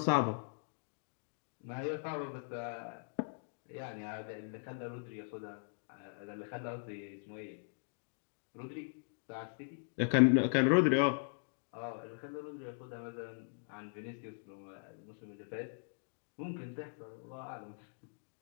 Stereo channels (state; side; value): silent; right; digital silence